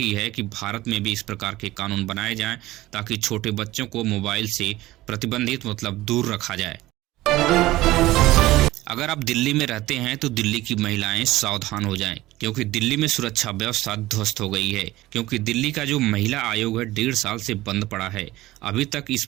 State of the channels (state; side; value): quieter; left; 17.3 dB